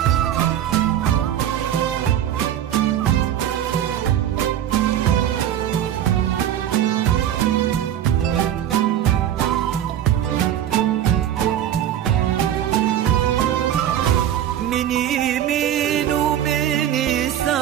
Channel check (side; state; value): left; quieter; 10.9 dB